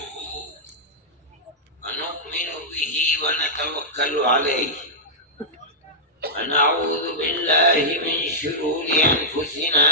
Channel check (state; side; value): normal; both; correlation -0.11